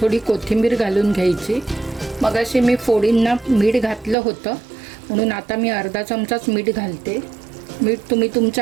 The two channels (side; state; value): left; drops out; at 4.2 s